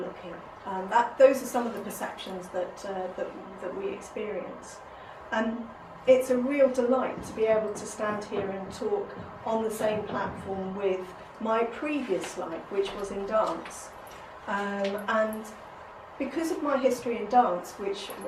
Those are some of the perceptions that we experience. It's a real delight to be able to stand here and talk on the same platform with my previous life, which was in dance. And because of my history in dance, which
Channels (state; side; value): identical; both; correlation 1.00